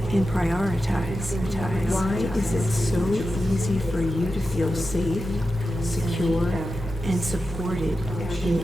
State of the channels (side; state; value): both; normal; correlation 0.90